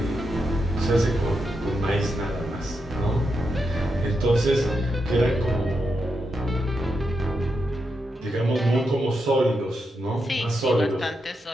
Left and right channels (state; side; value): normal; both; correlation 0.85